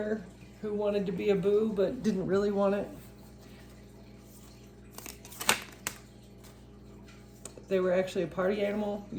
who wanted to be a boo but didn't really want it. They were actually a party animal.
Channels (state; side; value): identical; both; correlation 1.00